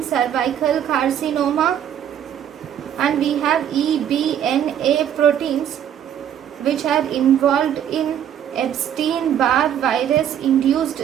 cervical carcinoma, and we have EBNA proteins which are involved in Epstein-Barr virus induced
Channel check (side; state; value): left; quieter; 9.8 dB